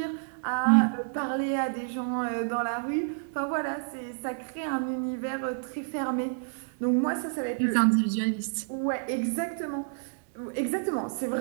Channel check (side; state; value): left; silent; digital silence